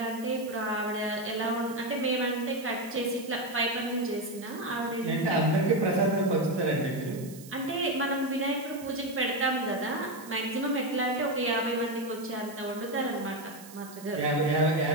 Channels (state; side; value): noise; right; hiss, 18 dB below the sound